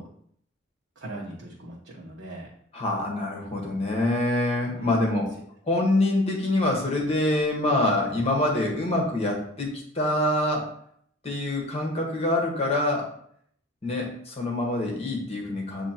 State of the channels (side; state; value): both; normal; correlation 0.44